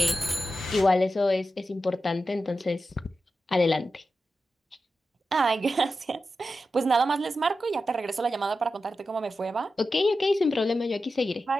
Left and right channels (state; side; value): normal; both; correlation 0.91